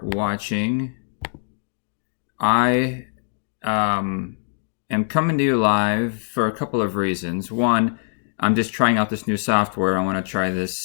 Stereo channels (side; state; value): right; silent; digital silence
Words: watching. I am coming to you live for a couple of reasons. One, I'm just trying out this new software. I want to try